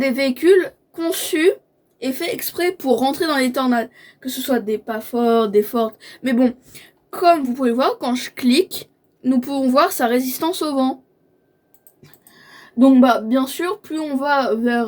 véhicules conçus et faits exprès pour rentrer dans les tornades. Que ce soit des pas forts, des fortes. Mais bon, comme vous pouvez voir, quand je clique, nous pouvons voir sa résistance au vent. Donc bien sûr, plus on va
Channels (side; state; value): both; identical; correlation 1.00